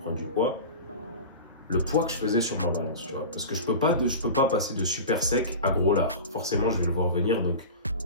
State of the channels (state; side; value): inverted; both; correlation -0.31